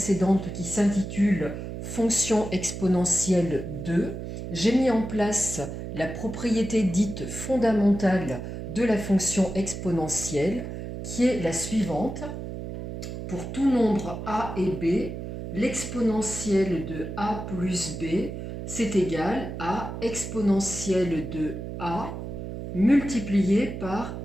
qui s'intitule Fonction exponentielle 2, j'ai mis en place la propriété dite fondamentale de la fonction exponentielle qui est la suivante. Pour tout nombre a et b, l'exponentielle de a plus b, c'est égal à exponentielle de a multiplié par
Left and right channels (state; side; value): noise; right; hum, 7 dB below the sound